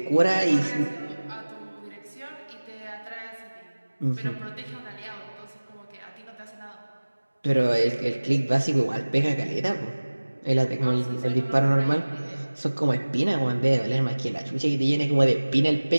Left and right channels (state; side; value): inverted; both; correlation -1.00